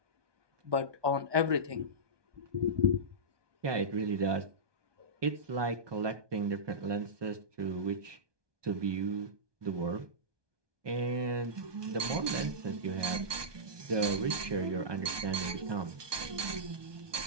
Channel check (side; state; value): left; late; 1.2 ms